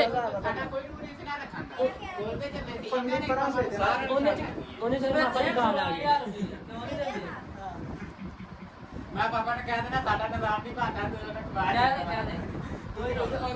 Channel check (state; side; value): identical; both; correlation 1.00